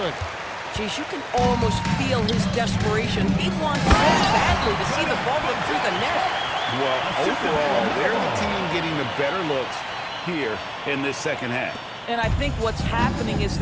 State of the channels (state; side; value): identical; both; correlation 1.00